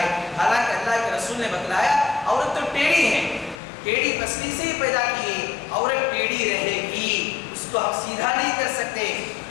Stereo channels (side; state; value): right; drops out; at 3.6 s